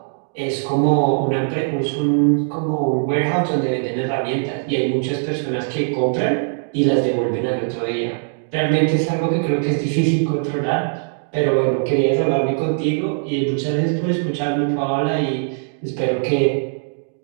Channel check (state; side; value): silent; left; digital silence